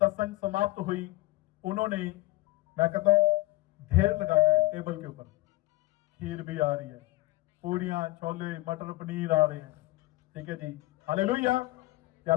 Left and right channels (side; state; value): right; quieter; 18.6 dB